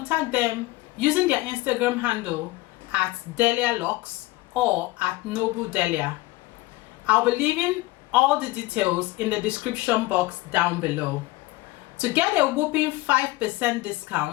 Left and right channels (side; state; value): right; quieter; 19.8 dB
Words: them using their Instagram handle at Delia Lux or at Noble Delia. I'll be leaving all the details in the description box down below. To get a whopping 5%